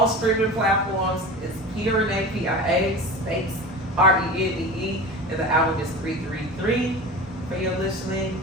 streaming platforms. It's Pia Renee, Pia space Renee, and the album is 333 for your listening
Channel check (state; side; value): normal; both; correlation 0.32